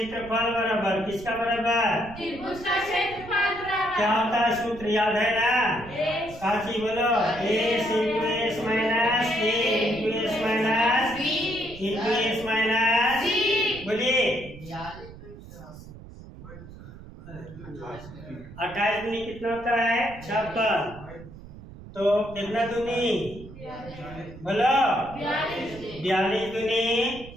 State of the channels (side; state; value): right; noise; rumble, 16 dB below the sound